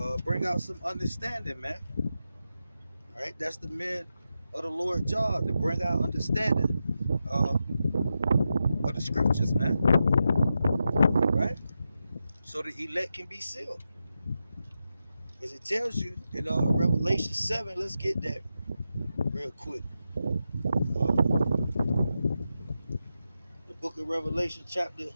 Bring out some understanding, man. All right, that's the men of the Lord job, to bring out understanding of the scriptures, man. All right, so the elect can be sealed, as it tells you in Revelation 7. Let's get that real quick. The book of Revelation, chapter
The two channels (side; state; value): both; inverted; correlation -0.88